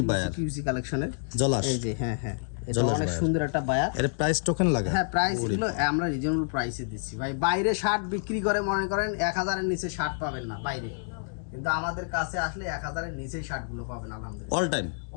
বায়ার? কিউসি কালেকশনের জলাস। এই যে হ্যাঁ হ্যাঁ, এটা অনেক সুন্দর একটা বায়ার। এর প্রাইস টোকেন লাগে? হ্যাঁ, প্রাইস গুলো আমরা রিজনেবল প্রাইসে দিচ্ছি ভাই। বাইরে শার্ট বিক্রি করে মনে করেন 1000 এর নিচে শার্ট পাবেন না বাইরে, কিন্তু আমাদের কাছে আসলে 1000 এর নিচেই শার্ট গুলো পাবেন আলহামদুলিল্লাহ।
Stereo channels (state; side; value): silent; right; digital silence